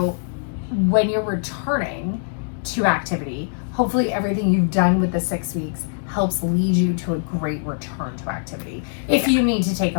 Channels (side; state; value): right; silent; digital silence